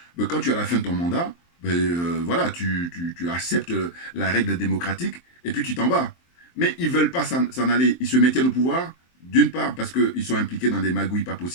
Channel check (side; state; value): right; late; 23 ms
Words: ben, quand tu es à la fin de ton mandat, ben, voilà, tu acceptes la règle démocratique et puis tu t'en vas. Mais ils ne veulent pas s'en aller. Ils se maintiennent au pouvoir, d'une part parce qu'ils sont impliqués dans des magouilles pas